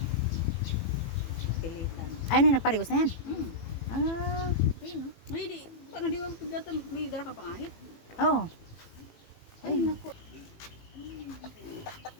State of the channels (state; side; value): late; right; 18 ms